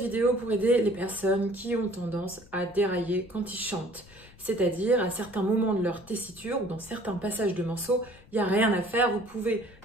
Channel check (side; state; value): left; noise; rumble, 23 dB below the sound